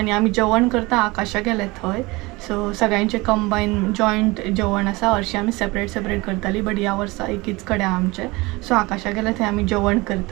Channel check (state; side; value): quieter; left; 23.1 dB